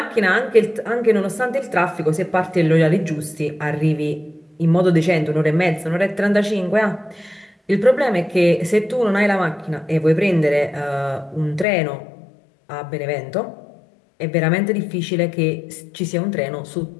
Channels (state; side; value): drops out; right; at 11.7 s